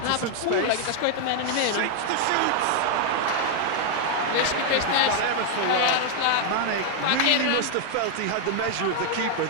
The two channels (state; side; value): different; both; correlation 0.00